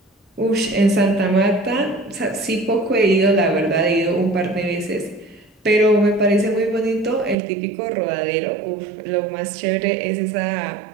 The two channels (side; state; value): left; drops out; at 7.4 s